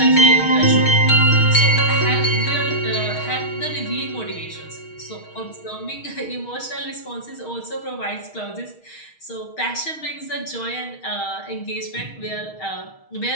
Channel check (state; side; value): late; right; 6.4 ms